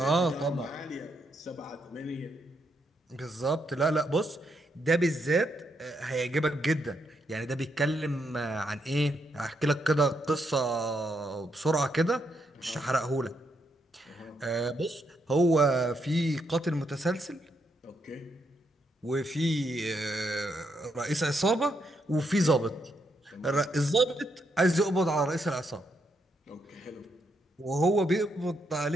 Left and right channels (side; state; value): both; normal; correlation 0.78